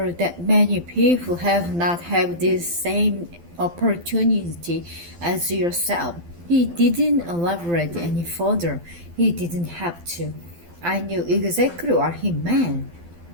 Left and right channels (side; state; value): left; late; 12 ms